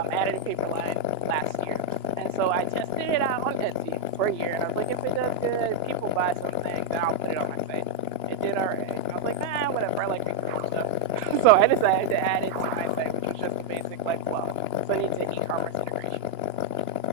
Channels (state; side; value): late; left; 2.9 ms